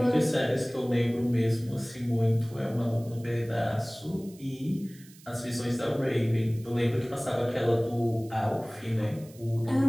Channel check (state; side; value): noise; right; hiss, 23 dB below the sound